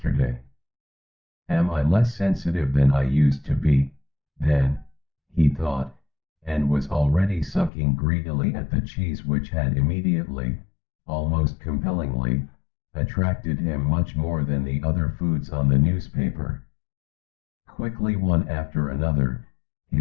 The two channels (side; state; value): right; drops out; at 7.7 s